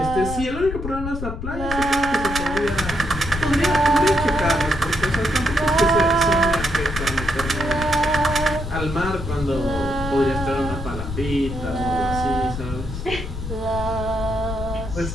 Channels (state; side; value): noise; left; rumble, 7 dB below the sound